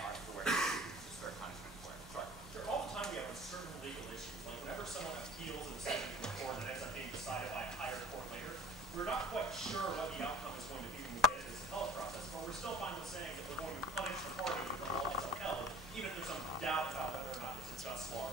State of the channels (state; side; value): normal; both; correlation 0.45